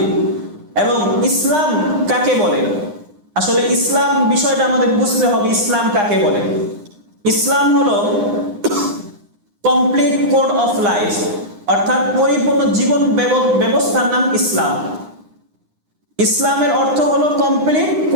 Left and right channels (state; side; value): late; left; 9.8 ms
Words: এবং ইসলাম কাকে বলে, আসলে ইসলাম বিষয়টা আমাদের বুঝতে হবে। ইসলাম কাকে বলে? ইসলাম হলো কমপ্লিট কোড অফ লাইফ, অর্থাৎ পরিপূর্ণ জীবন ব্যবস্থার নাম ইসলাম। ইসলামের অর্থ হলো কমপ্লিট